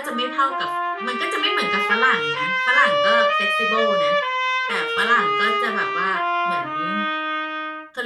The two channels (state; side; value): identical; both; correlation 1.00